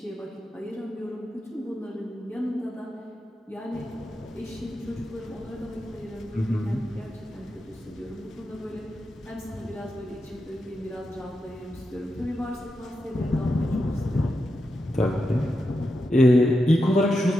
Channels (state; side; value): normal; both; correlation 0.87